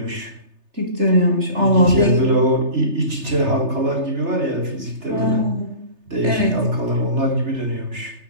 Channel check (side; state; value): left; late; 3.3 ms